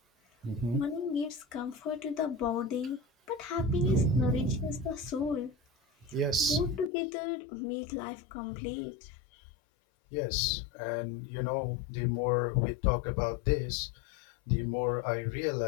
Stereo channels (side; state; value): right; drops out; at 6.9 s